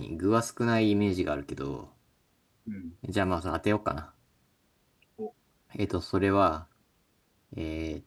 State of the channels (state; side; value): identical; both; correlation 1.00